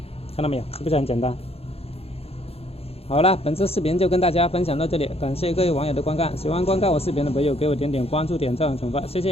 看到没有？是不是很简单？好了，本次视频就跟大家分享到这里，感谢各位网友的观看。喜欢观看我视频的朋友，给我点关注、点赞、转发，谢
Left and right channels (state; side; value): late; right; 0.29 ms